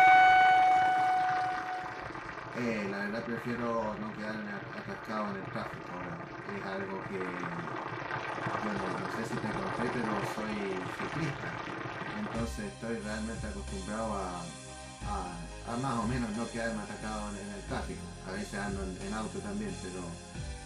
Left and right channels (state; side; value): identical; both; correlation 1.00